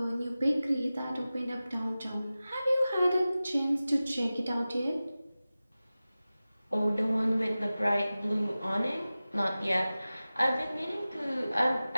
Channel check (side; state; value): both; inverted; correlation -0.96